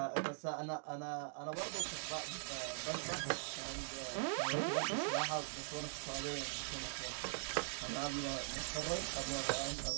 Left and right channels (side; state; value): left; silent; digital silence